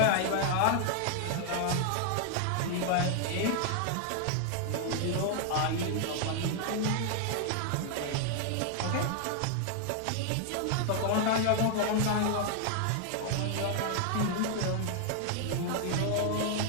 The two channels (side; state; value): both; different; correlation 0.00